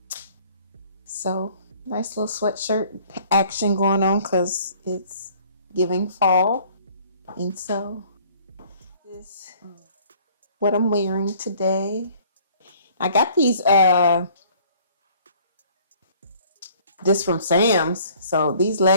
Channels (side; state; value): both; inverted; correlation -0.56